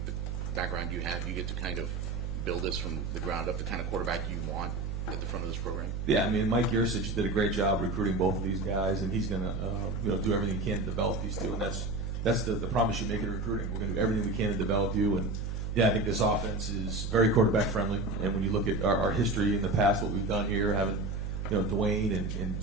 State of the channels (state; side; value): noise; right; hum, 3 dB below the sound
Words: the background you have, you get to kind of build this from the ground up, the kind of quarterback you want at the front of this program? Yeah, I mean, Mike Yursich did a great job recruiting both of these guys, and he's going to do everything he can to develop these two, and that's the promise you make in recruiting. We're going to do everything we can to develop you, and I think this offense is very quarterback friendly. And when you look at our history in the past, what we've done here, having Dwayne and